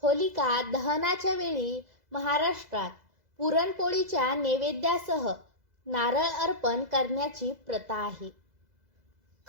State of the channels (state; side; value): late; left; 2.0 ms